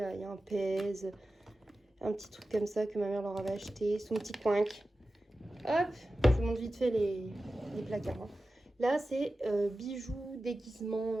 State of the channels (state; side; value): normal; both; correlation 0.94